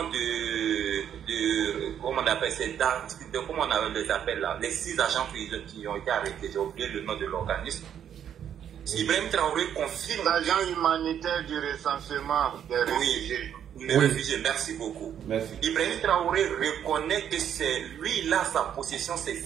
comment on appelle comment on les appelle là, les 6 agents qui ont été arrêtés, j'ai oublié le nom de l'organisme. Ibrahim Traoré confirme. L'agent humanitaire du recensement des réfugiés. Oui, réfugiés, merci beaucoup. Merci. Ibrahim Traoré reconnaît que c'est lui-là, sa possession, ces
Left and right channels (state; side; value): quieter; left; 9.3 dB